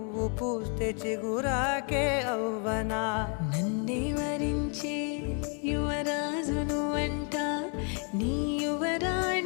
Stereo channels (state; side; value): quieter; right; 39.4 dB